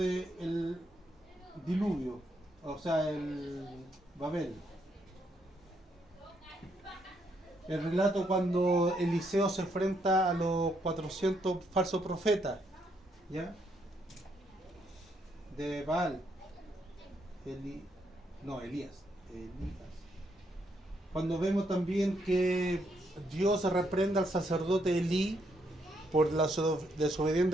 diluvio, o sea, el Babel, el relato cuando Eliseo se enfrenta a los 400 falsos profetas, ¿ya? De Baal, Elías. Cuando vemos también que Dios reprende al sacerdote Elí por la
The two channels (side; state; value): both; normal; correlation 0.75